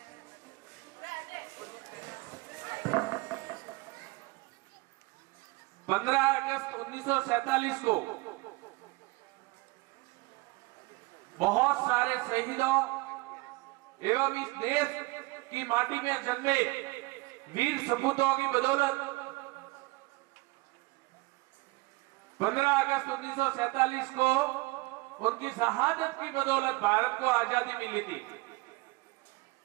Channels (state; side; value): quieter; left; 23.3 dB